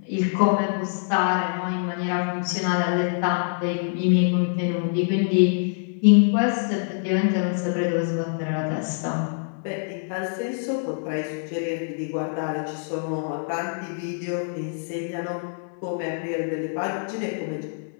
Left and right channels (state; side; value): silent; right; 62 dB below the other